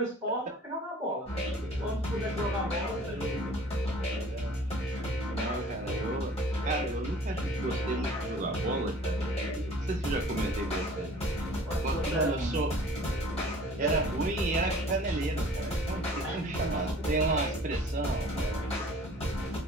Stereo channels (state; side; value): normal; both; correlation 0.49